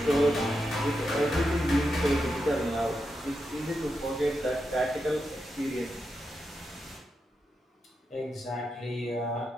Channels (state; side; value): normal; both; correlation 0.86